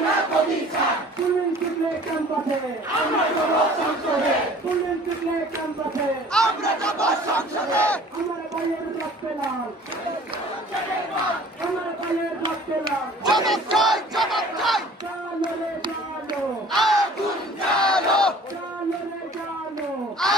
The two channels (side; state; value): both; normal; correlation 0.49